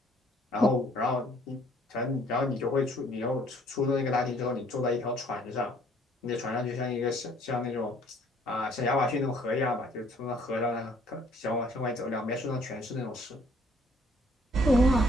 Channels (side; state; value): both; normal; correlation 0.61